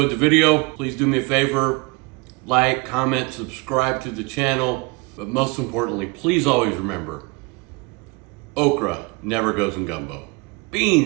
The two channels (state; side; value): quieter; left; 27.6 dB